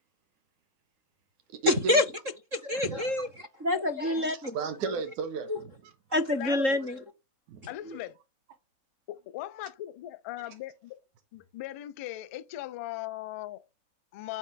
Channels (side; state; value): left; late; 3.7 ms